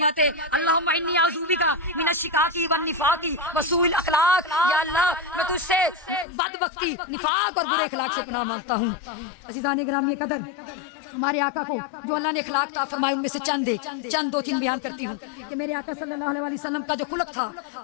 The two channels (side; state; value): right; drops out; at 6.2 s